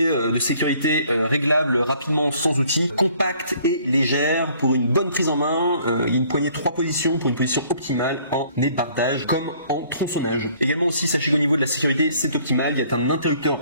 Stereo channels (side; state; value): both; inverted; correlation -0.59